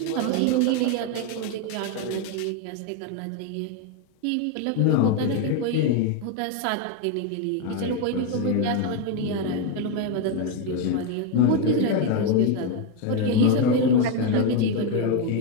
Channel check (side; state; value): both; different; correlation 0.02